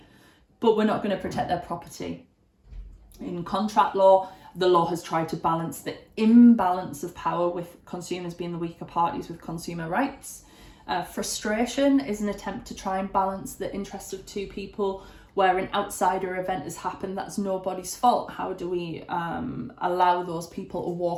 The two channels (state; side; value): identical; both; correlation 1.00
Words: but we're not going to protect their property. In contract law, the law has tried to balance the imbalance of power with consumers being the weaker parties with consumer rights. Frustration is an attempt to try and balance the interests of two people where an outsider event has happened that's nobody's fault. How do we allow those people to